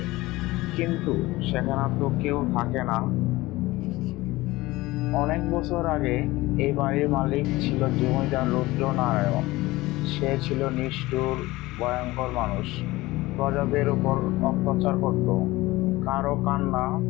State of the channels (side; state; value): right; quieter; 19.5 dB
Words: কিন্তু সেখানে তো কেউ থাকে না। অনেক বছর আগে এই বাড়ির মালিক ছিল জমিদার রুদ্রনারায়ণ। সে ছিল নিষ্ঠুর, ভয়ঙ্কর মানুষ। প্রজাদের উপর অত্যাচার করত। কারো কান্না,